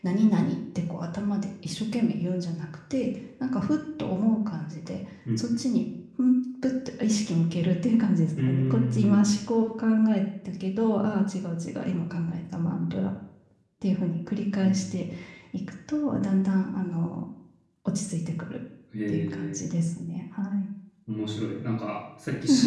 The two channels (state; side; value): identical; both; correlation 1.00